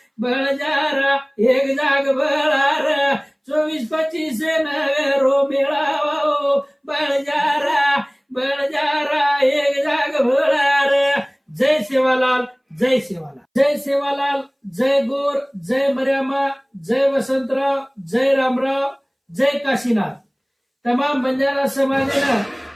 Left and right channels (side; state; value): both; identical; correlation 1.00